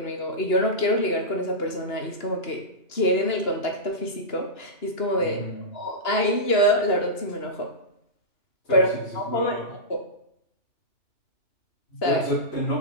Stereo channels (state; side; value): late; right; 2.9 ms